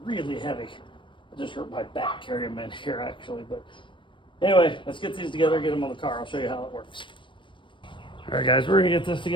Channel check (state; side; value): late; right; 0.24 ms